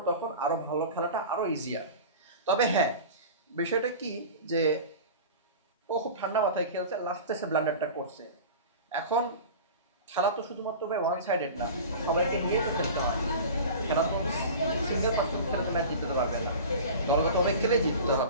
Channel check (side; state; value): both; inverted; correlation -0.35